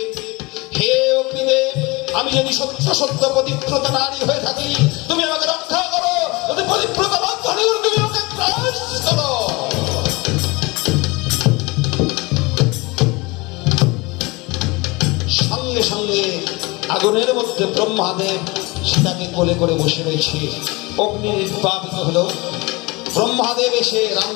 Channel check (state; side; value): quieter; right; 24.8 dB